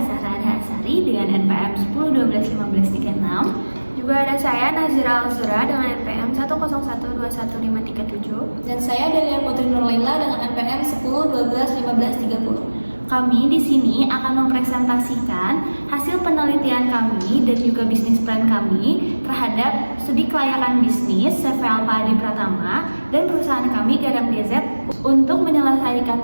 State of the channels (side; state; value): both; inverted; correlation -1.00